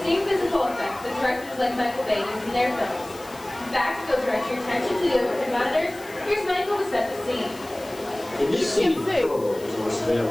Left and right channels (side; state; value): left; noise; hiss, 20 dB below the sound